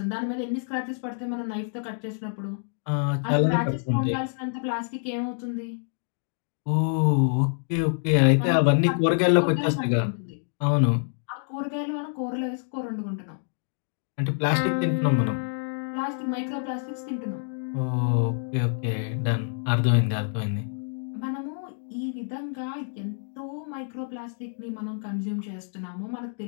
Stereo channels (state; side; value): silent; right; digital silence